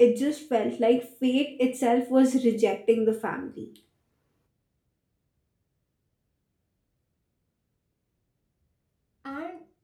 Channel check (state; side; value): identical; both; correlation 1.00